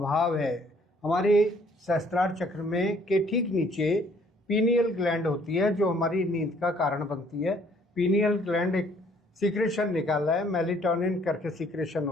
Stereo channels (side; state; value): both; normal; correlation 0.61